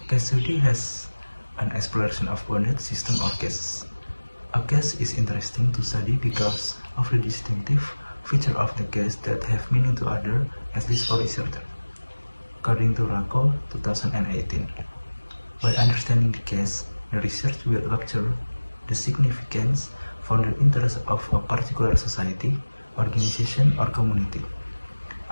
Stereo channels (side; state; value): both; inverted; correlation -1.00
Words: Case study has an exploration of bounded system or cases. A case is interesting to study because of the distinctive feature of the case that have meaning to others, at least for researcher. According to Rako 2018. By understanding the case, the research will capture the significance for the interest of a particular society, organization, or community.